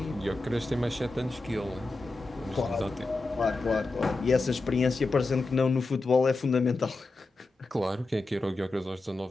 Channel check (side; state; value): right; quieter; 3.2 dB